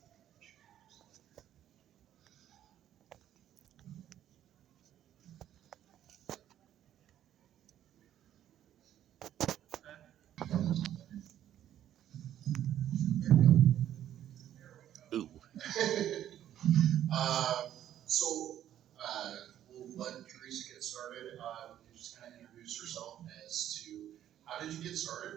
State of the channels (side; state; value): left; quieter; 11.3 dB